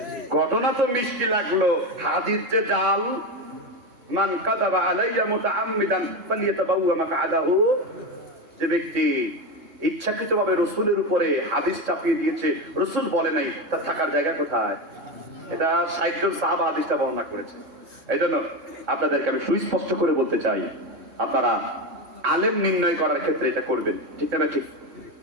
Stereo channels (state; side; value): late; left; 3.7 ms